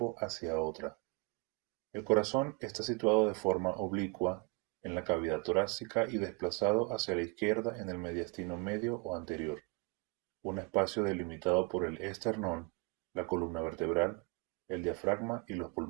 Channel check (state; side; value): quieter; left; 29.6 dB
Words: hacia otra. El corazón está situado de forma oblicua en la cavidad torácica y desplazado hacia la izquierda en el mediastino medio o anterior, un espacio delimitado por el esternón, la columna vertebral, el diafragma y los